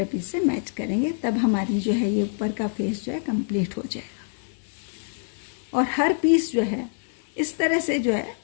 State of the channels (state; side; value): silent; right; digital silence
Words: पीस से मैच करेंगे, तब हमारी जो है ये ऊपर का फेस जो है कंप्लीट हो जाएगा। और हर पीस जो है इस तरह से जो है